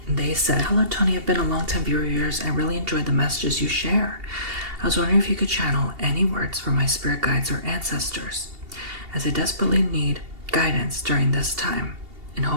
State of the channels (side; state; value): left; late; 2.8 ms